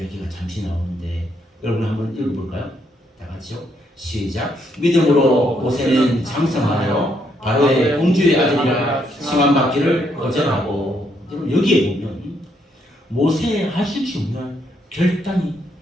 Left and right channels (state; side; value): normal; both; correlation 0.74